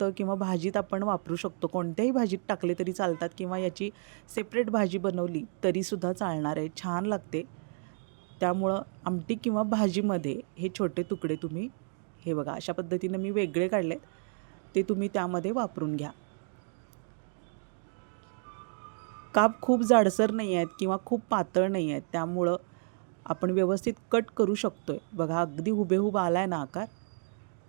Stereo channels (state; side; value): silent; left; 57 dB below the other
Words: किंवा भाजीत आपण वापरू शकतो. कोणत्याही भाजीत टाकले तरी चालतात किंवा याची सेपरेट भाजी बनवली तरीसुद्धा चालणार आहे, छान लागते. त्यामुळं आमटी किंवा भाजीमध्ये हे छोटे तुकडे तुम्ही, हे बघा अशा पद्धतीनं मी वेगळे काढले, ते तुम्ही त्यामध्ये वापरून घ्या. काप खूप जाडसर नाही आहेत किंवा खूप पातळ नाही आहेत, त्यामुळं आपण व्यवस्थित कट करू शकतो आहे. बघा, अगदी हुबेहूब आला आहे ना आकार.